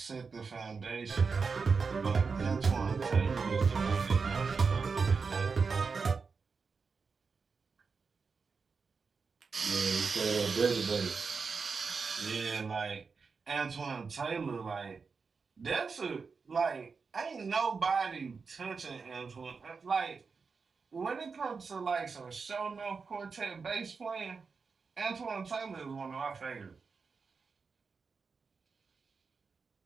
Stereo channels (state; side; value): quieter; left; 5.0 dB